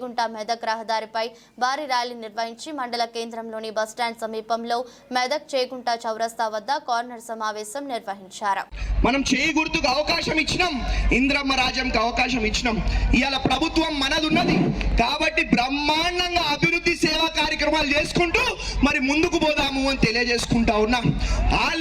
మెదక్ రహదారిపై భారీ ర్యాలీ నిర్వహించి మండల కేంద్రంలోని బస్టాండ్ సమీపంలో మెదక్ చేగుంట చౌరస్తా వద్ద కార్నర్ సమావేశం నిర్వహించారు. మనం చేయి గుర్తుకు అవకాశం ఇచ్చినాం, ఇంద్రమ్మ రాజ్యంకి అవకాశం ఇచ్చినాం. ఇవాళ ప్రభుత్వం మనదున్నది కాబట్టి బ్రహ్మాండంగా అభివృద్ధి సేవా కార్యక్రమాలు చేసుకుంటూ మరి ముందుకు పోదాము అని తెలియజేసుకుంటా ఉన్నాం. ఆ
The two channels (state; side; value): identical; both; correlation 1.00